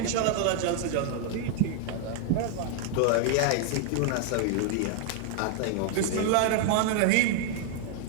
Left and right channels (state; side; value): different; both; correlation 0.00